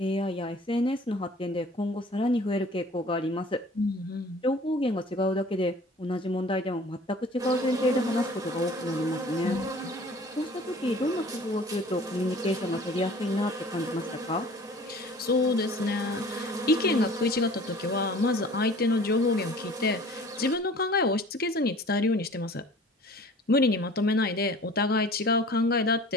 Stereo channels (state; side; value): normal; both; correlation 0.47